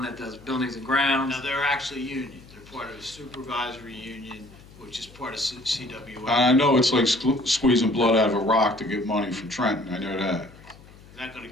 that does buildings and grounds. now they're actually union. They're part of a supervisory union, which is part of CWA. I know it's like squeezing blood out of a rock to get money from Trenton, I know that. Not gonna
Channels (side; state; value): left; noise; hum, 22 dB below the sound